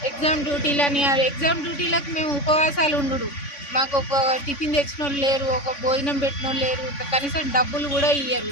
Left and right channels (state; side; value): late; right; 3.5 ms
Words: ఎగ్జామ్ డ్యూటీలని ఎగ్జామ్ డ్యూటీలకు మేము ఉపవాసాలు ఉండు. మాకు ఒక టిఫిన్ తెచ్చిన వాళ్ళు లేరు, ఒక భోజనం పెట్టిన వాళ్ళు లేరు, కనీసం డబ్బులు కూడా ఇయ్యరు